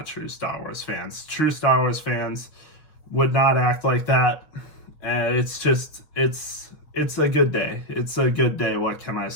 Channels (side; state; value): right; late; 6.4 ms